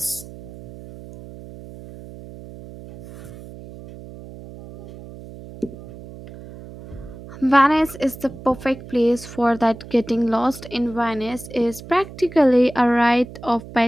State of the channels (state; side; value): noise; right; hum, 16 dB below the sound